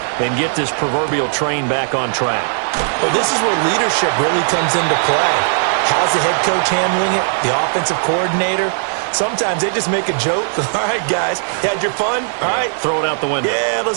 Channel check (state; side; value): silent; left; 68 dB below the other